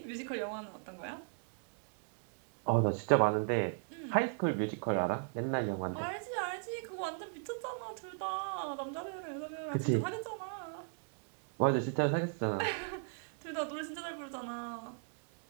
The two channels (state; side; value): silent; left; 53 dB below the other